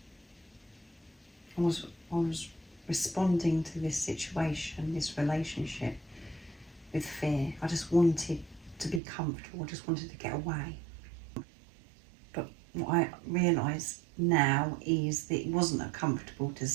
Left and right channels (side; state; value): left; drops out; at 9.0 s